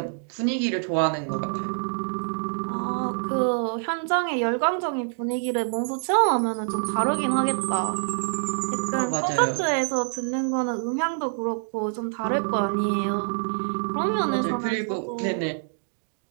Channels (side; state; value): left; silent; 61 dB below the other